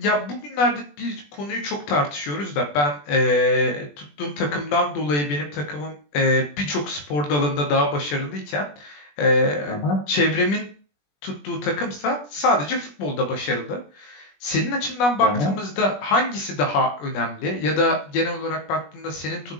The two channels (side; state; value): right; late; 20 ms